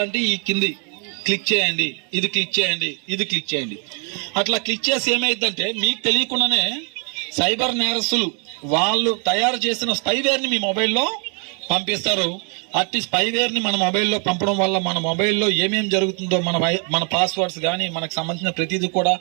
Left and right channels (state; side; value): quieter; left; 38.6 dB